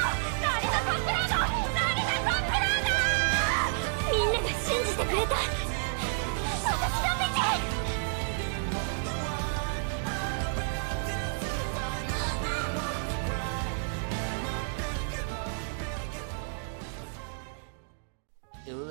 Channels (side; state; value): left; silent; digital silence